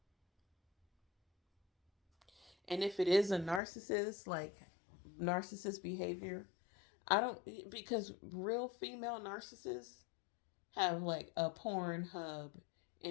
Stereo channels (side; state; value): right; drops out; at 3.6 s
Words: And if it is a narcissist, like narcissist behavior, I don't, because real female narcissists have like a porn hub